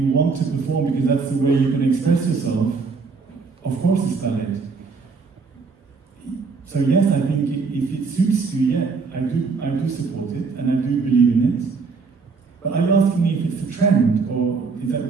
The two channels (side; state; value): left; quieter; 4.7 dB